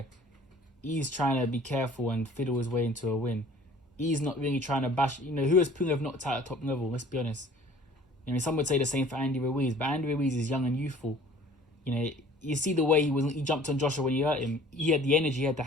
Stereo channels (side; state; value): both; normal; correlation 0.50